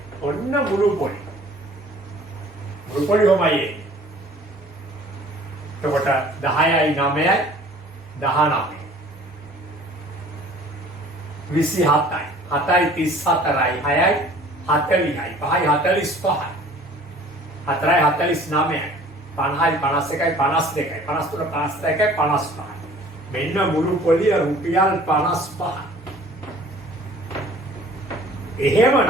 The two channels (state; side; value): normal; both; correlation 0.50